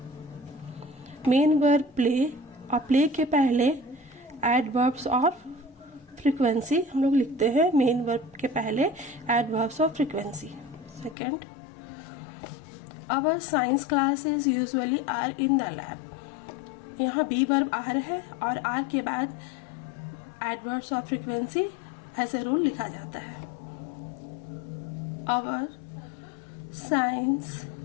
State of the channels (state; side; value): drops out; right; at 11.2 s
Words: Main verb play और play के पहले adverbs और frequency हम लोग लिखते हैं main verb के पहले adverbs of frequency. Second, our science classes usually are in the lab. यहाँ बी वर्ब आर है और आर के बाद adverbs of frequency as a rule लिखा जाता है. Our science